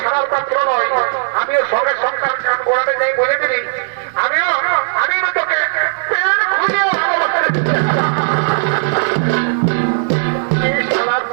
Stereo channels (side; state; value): left; silent; digital silence